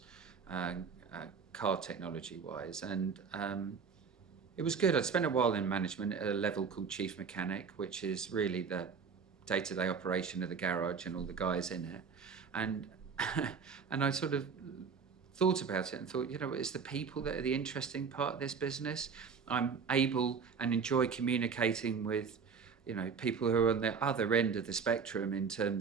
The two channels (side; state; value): left; quieter; 5.9 dB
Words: car technology wise. And it was good. I'd spent a while in management at a level called chief mechanic, which is really the day-to-day operation of the garage and all the guys in it. And I sort of thought about it and thought, it's the people that are the interesting part of this business. I'm able and enjoy communicating with, people who are on the other end of the spectrum in